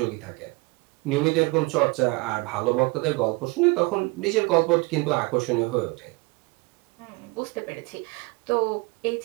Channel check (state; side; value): quieter; left; 26.0 dB